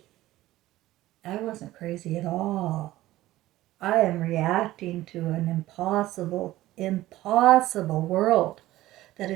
I wasn't crazy at all. I am reacting to an impossible world that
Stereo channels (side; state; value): left; quieter; 16.0 dB